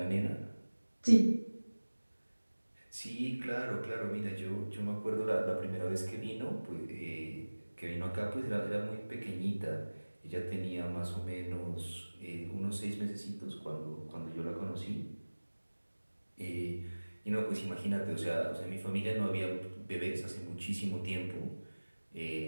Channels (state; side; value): inverted; both; correlation -1.00